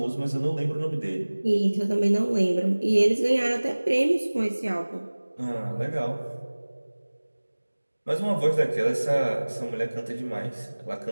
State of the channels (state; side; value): inverted; both; correlation -1.00